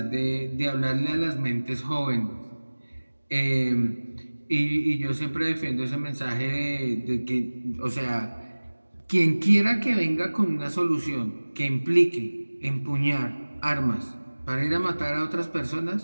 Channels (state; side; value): inverted; both; correlation -1.00